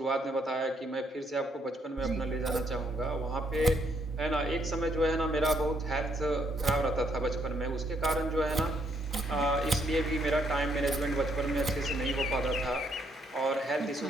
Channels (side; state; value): both; normal; correlation 0.72